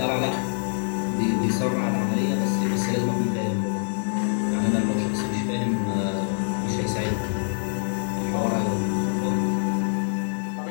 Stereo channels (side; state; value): right; silent; 55 dB below the other